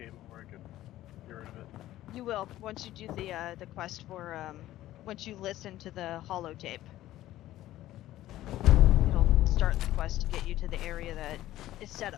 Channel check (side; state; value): right; quieter; 14.6 dB